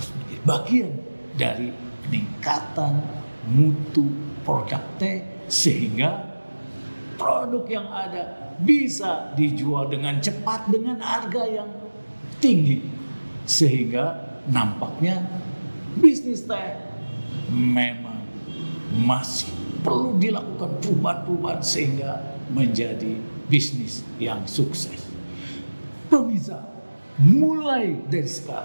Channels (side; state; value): both; inverted; correlation -1.00